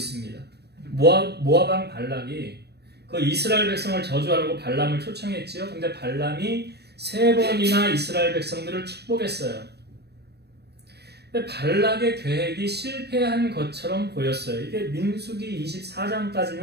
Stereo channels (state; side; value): late; left; 0.48 ms